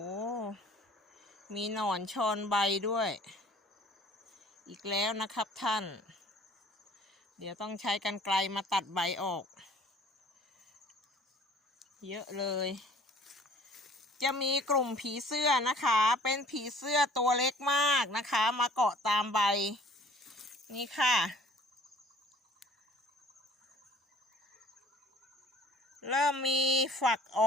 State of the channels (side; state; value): both; normal; correlation 0.52